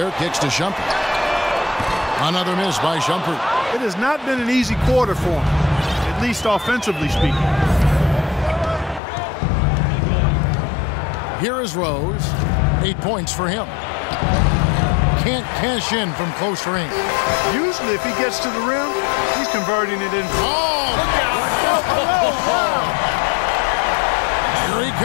kicks to Shumpert. Another miss by Shumpert. It has not been an easy quarter for him, at least offensively speaking. Here is Rose. 8 points for him. Can't cash in from close range. Usually if he gets to the rim, he's converting it in. Oh! Here he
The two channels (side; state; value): right; drops out; at 9.0 s